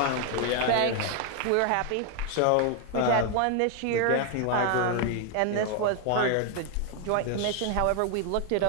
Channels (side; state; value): both; different; correlation 0.01